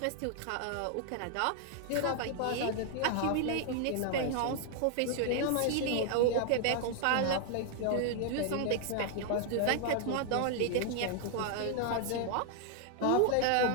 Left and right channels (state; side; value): different; both; correlation 0.00